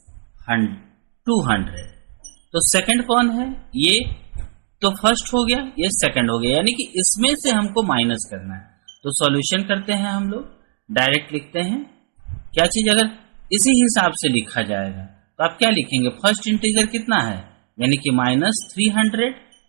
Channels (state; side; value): silent; left; 66 dB below the other